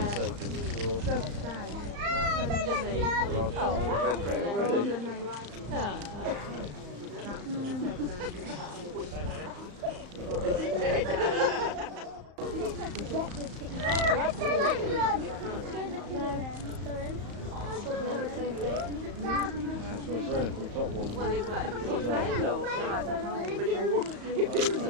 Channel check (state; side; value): late; left; 35 ms